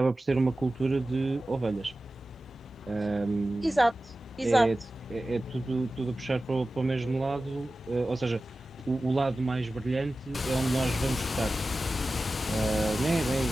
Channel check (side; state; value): both; normal; correlation 0.95